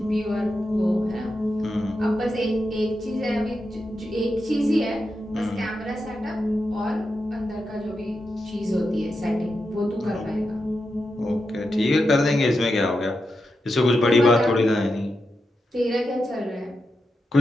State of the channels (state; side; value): normal; both; correlation 0.88